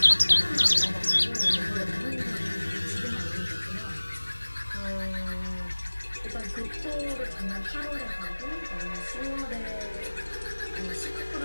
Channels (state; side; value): inverted; both; correlation -1.00